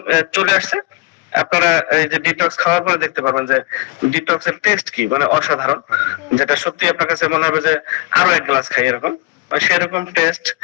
চলে আসছে। আপনারা এই যে ডিটক্স খাওয়ার পরে দেখতে পারবেন যে ডিটক্স এর টেস্ট কি, মানে অসাধারণ, যেটা সত্যি আপনার কাছে মনে হবে যে আরো এক গ্লাস খাই এরকম। সেরকম টেস্ট,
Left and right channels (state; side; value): quieter; right; 24.5 dB